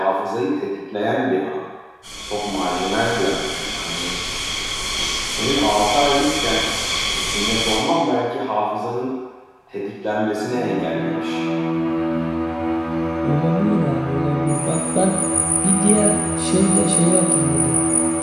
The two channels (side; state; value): both; identical; correlation 1.00